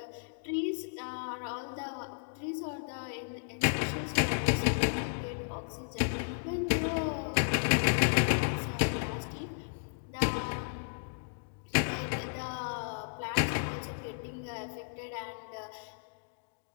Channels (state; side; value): silent; right; digital silence